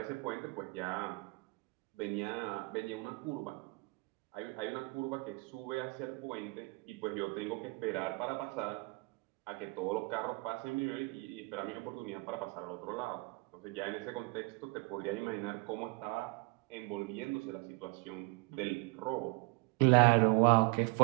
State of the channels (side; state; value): left; quieter; 27.7 dB